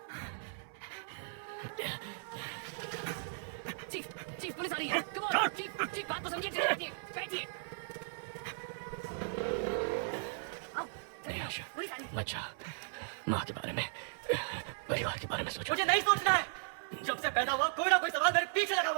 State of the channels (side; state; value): left; silent; 53 dB below the other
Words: Chief police आ रही है। कम ऑन चीफ बात तो समझिए। बैठिए बैठिए। मत जा, माँ के बारे में, परिवार के बारे में सोचो। मुझे नहीं सोचना है। पैदा हुआ कोई ना कोई सवाल मेरे पीछे लगा